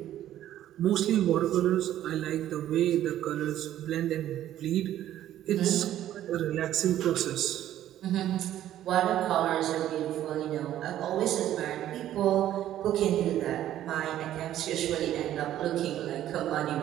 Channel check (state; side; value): quieter; left; 12.3 dB